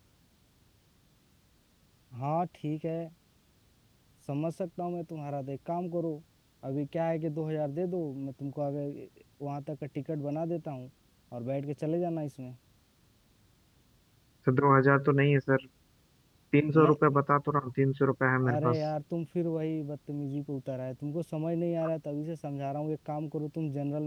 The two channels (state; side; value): identical; both; correlation 1.00